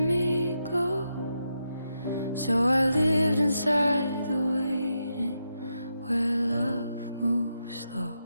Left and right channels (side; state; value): both; inverted; correlation -0.84